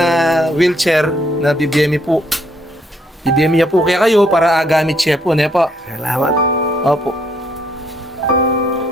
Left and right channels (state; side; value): normal; both; correlation 0.70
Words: wheelchair na BBM po. BBM niya po kaya kayo para gamit siya po. Ne po. Salamat. Opo.